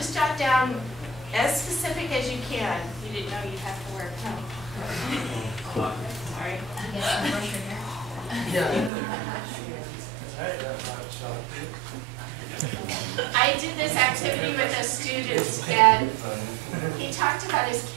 jot down as specific as you can. You didn't know you'd have to work, no. Sorry. I did this activity with a student, and he talked about his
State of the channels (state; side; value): drops out; left; at 8.9 s